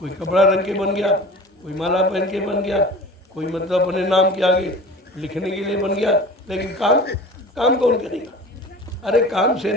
कपड़ा रंग के बन गया, कोई माला पहन के बन गया, कोई मतलब अपने नाम के आगे लिखने के लिए बन गया, लेकिन काम कौन करेगा? अरे काम से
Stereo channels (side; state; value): both; normal; correlation 0.38